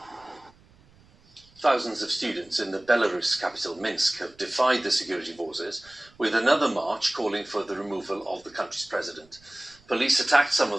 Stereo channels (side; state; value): right; noise; rumble, 29 dB below the sound